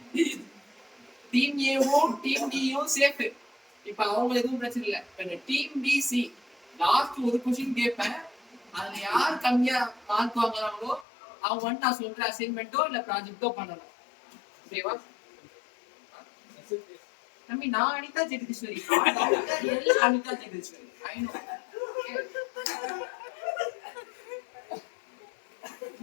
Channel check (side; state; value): right; drops out; at 11.1 s